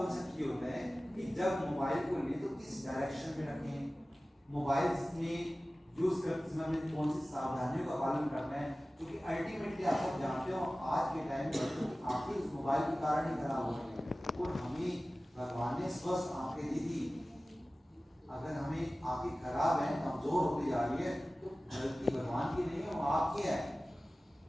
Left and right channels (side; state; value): both; normal; correlation 0.97